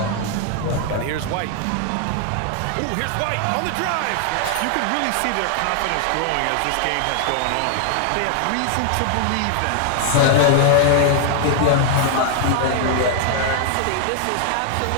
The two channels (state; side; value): different; both; correlation 0.00